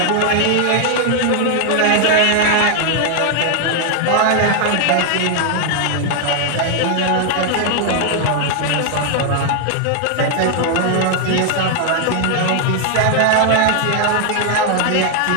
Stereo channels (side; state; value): both; different; correlation 0.00